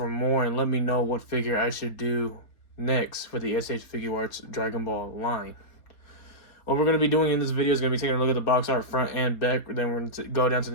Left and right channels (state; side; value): late; right; 4.3 ms